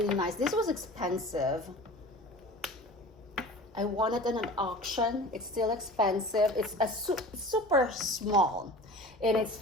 nice. This was expensive. I won it in an auction. It's still expensive. It's a super small, and it's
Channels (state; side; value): normal; both; correlation 0.39